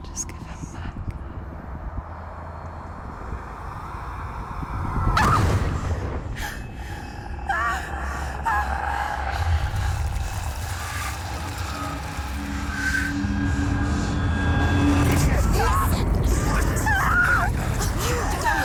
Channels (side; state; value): both; identical; correlation 1.00